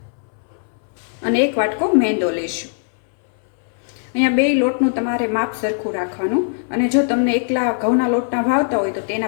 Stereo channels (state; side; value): silent; right; 62 dB below the other